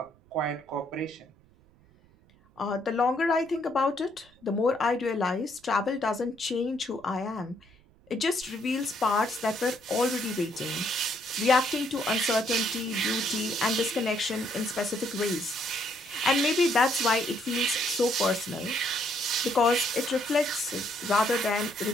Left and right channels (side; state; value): right; noise; rumble, 29 dB below the sound